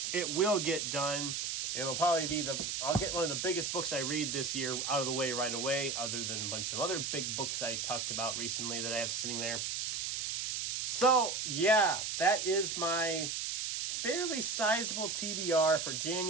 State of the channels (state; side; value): noise; right; hiss, 2 dB below the sound